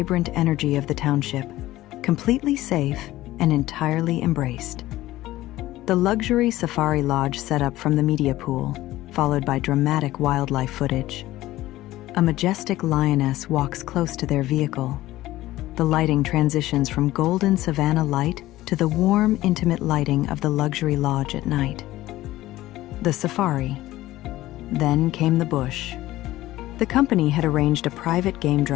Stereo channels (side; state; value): right; quieter; 16.2 dB